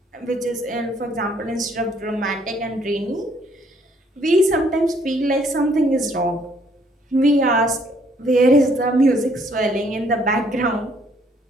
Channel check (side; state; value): both; normal; correlation 0.65